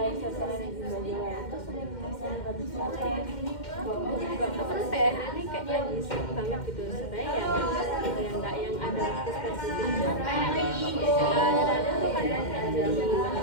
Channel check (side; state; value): right; late; 2.1 ms